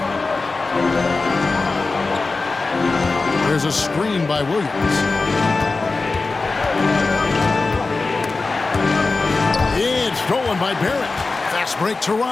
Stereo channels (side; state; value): right; quieter; 3.8 dB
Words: There's a screen by Williams. It's stolen by Barrett. Fast break